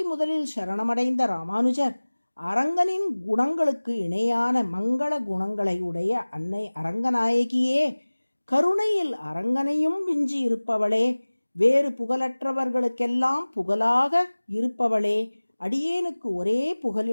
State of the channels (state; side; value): inverted; both; correlation -1.00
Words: முதலில் சரணமடைந்த ராமானுஜர் அரங்கனின் குணங்களுக்கு இணையான மங்கள குணங்களை உடைய அன்னை அரங்கநாயகியே, கருணையில் அரங்கனையும் விஞ்சி இருப்பவளே, வேறு புகழற்றவர்களுக்கெல்லாம் புகழாக இருப்பவளே, அடியேனுக்கு ஒரே